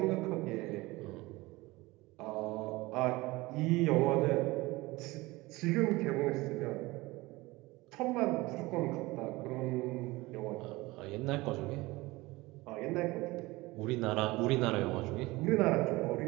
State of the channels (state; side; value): quieter; left; 21.1 dB